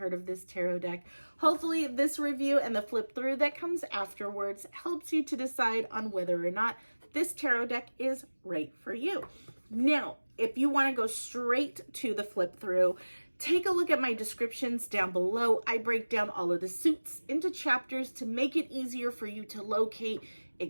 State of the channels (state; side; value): inverted; both; correlation -1.00